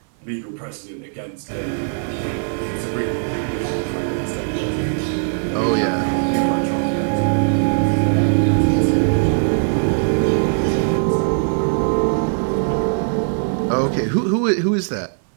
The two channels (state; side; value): silent; left; 66 dB below the other